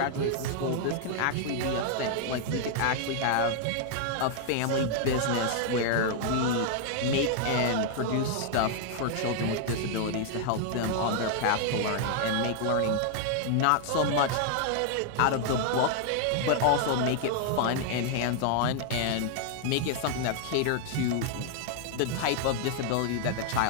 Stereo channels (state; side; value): different; both; correlation 0.00